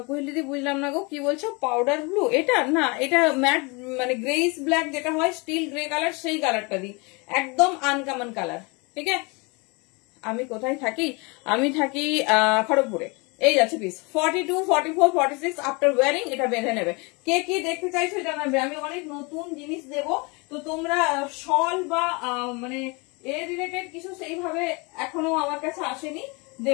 কোহেলিদি বুঝলাম না গো, কি বলছো? পাউডার ব্লু এটা না, এটা ম্যাট মানে গ্রেইস ব্ল্যাক যেটা হয়, স্টিল গ্রে কালার, সেই কালারটা দিই। একদম আনকমন কালার, ঠিক আছে? আমি কোথায় থাকি? আমি থাকি খড়গপুরে। এই যাচ্ছে পিস 42, 44, 46 আফটার ওয়ারিং এটা বেঁধে নেবে। কে কি দেখতে চাইছো জানাবে, আমি অনেক নতুন জিনিস দেব। তো তোমরা শল বা মানে এ রিলেটেড কিছু সেইভাবে এখনো আমার কাছে আসেনি,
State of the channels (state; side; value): quieter; right; 29.1 dB